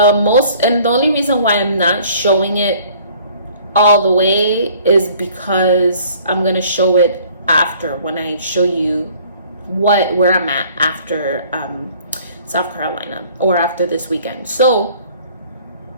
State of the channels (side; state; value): both; inverted; correlation -0.55